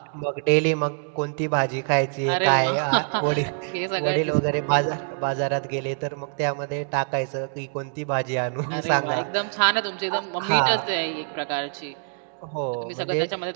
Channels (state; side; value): silent; left; digital silence